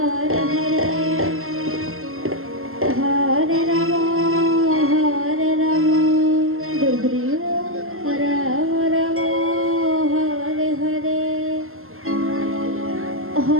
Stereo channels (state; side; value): late; left; 0.62 ms